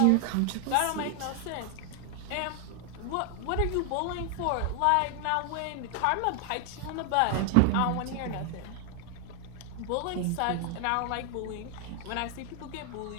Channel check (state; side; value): different; both; correlation 0.00